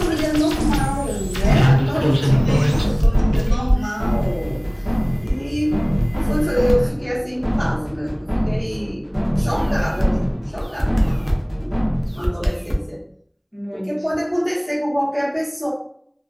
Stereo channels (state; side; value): identical; both; correlation 1.00